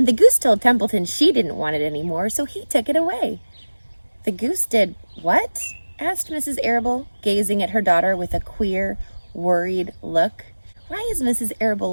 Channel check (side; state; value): both; inverted; correlation -1.00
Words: the goose told Templeton she didn't want it anymore, so he took it away." "The goose did what?" asked Mrs. Arable, gazing at her daughter with a queer, worried look. Why is Mrs.